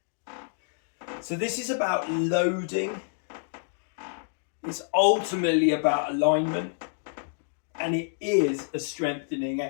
So this is about loading. It's ultimately about alignment, and it is a strengthening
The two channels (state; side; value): silent; right; digital silence